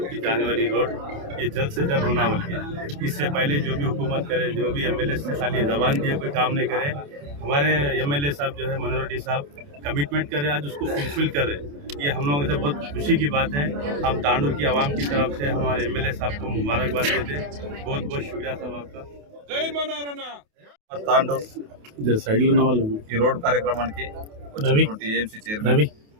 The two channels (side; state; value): left; late; 28 ms